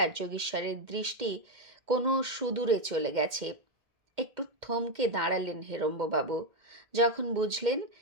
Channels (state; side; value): late; left; 2.1 ms